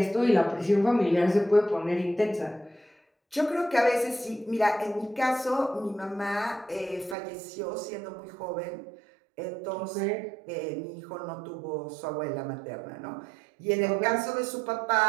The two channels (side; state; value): left; drops out; at 7.2 s